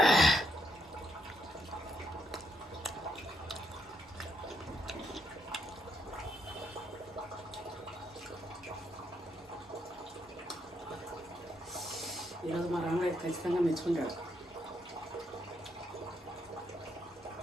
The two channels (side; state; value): both; normal; correlation 0.76